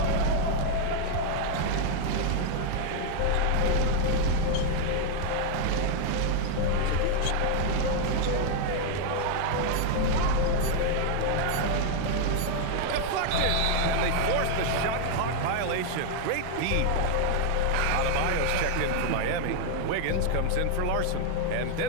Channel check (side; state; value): both; different; correlation 0.00